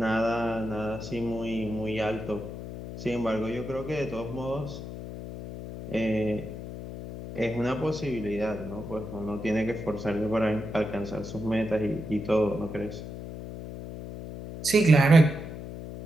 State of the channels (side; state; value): left; noise; hum, 9 dB below the sound